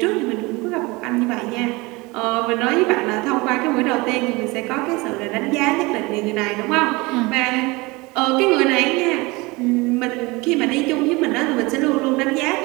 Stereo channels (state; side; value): quieter; left; 23.9 dB